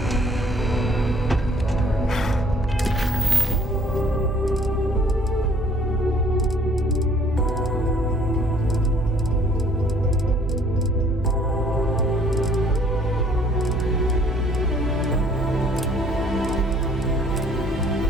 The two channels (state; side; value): normal; both; correlation 0.59